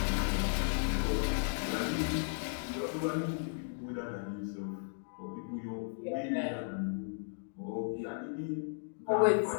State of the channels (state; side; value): silent; right; digital silence